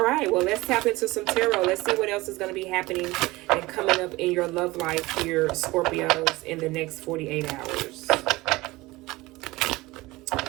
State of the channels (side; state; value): left; quieter; 20.5 dB